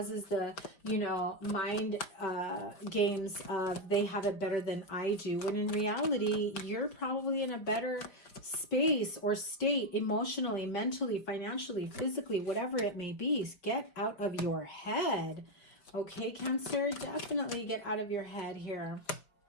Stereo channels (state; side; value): late; right; 5.3 ms